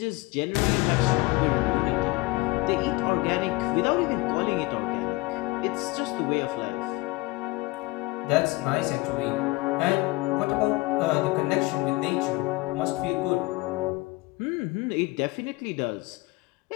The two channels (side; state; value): right; quieter; 22.4 dB